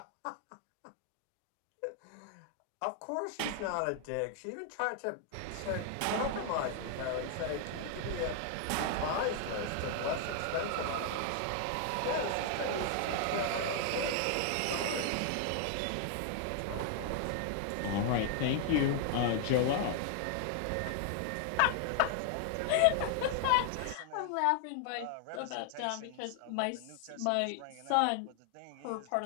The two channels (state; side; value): different; both; correlation 0.00